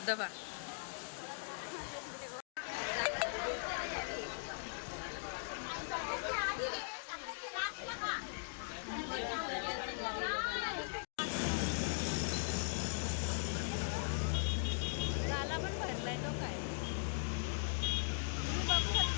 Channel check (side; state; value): right; silent; digital silence